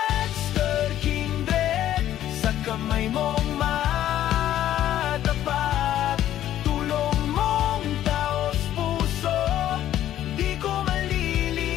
Kindred, sa kamay mong matapat, tulong mong taos puso, di ko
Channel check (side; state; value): right; quieter; 12.2 dB